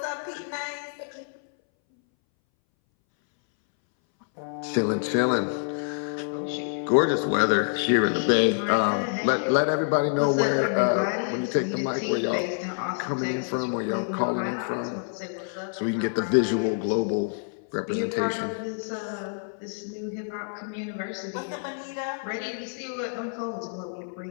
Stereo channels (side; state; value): right; silent; 60 dB below the other